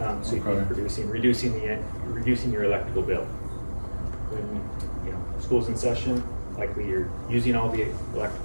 So you can be reducing your electrical bill. When school's in session, likely you're using all the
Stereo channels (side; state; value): both; inverted; correlation -1.00